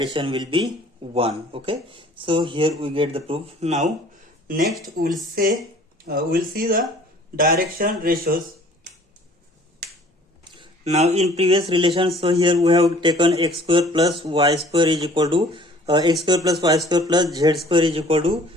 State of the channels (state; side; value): normal; both; correlation 0.52